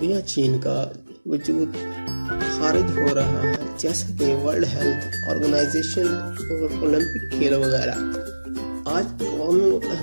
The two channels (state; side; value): inverted; both; correlation -1.00